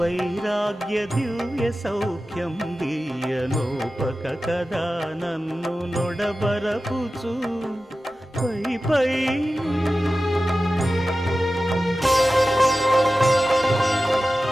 దివ్య సౌఖ్యం దీయనోపక కదా నన్ను నొడబరపుచు పై పై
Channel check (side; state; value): both; normal; correlation 0.94